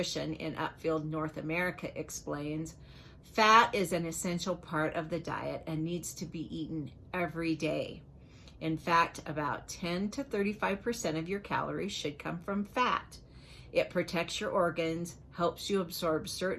in Upfield, North America, explains, fat is an essential part of the diet and needs to be eaten every day. In fact, about 10 to 35% of your calories should come from fat. It protects your organs, helps you absorb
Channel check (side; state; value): both; identical; correlation 1.00